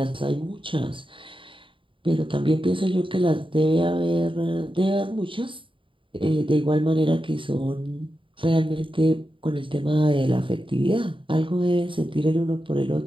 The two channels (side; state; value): left; late; 0.25 ms